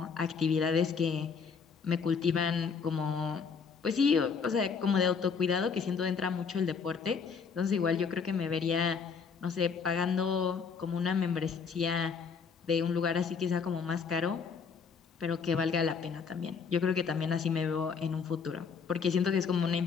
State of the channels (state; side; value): quieter; right; 5.8 dB